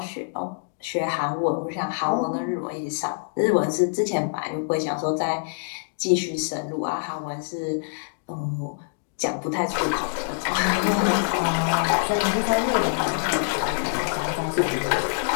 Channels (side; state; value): right; silent; digital silence